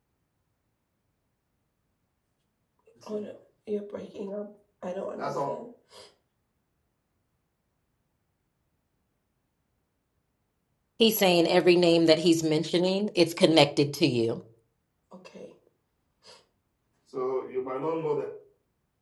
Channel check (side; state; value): both; identical; correlation 1.00